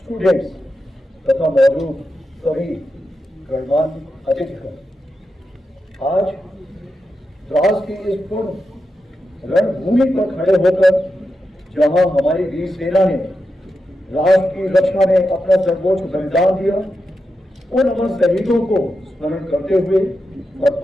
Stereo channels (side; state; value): both; normal; correlation 0.88